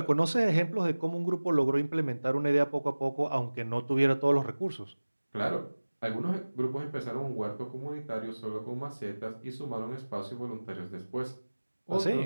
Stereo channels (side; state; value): both; inverted; correlation -1.00